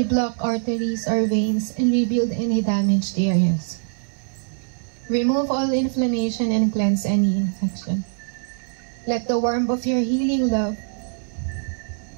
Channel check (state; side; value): silent; left; 63 dB below the other